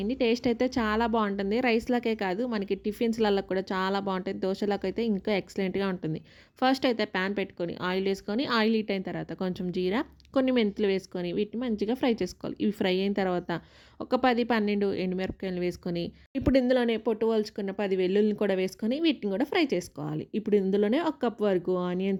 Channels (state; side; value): identical; both; correlation 1.00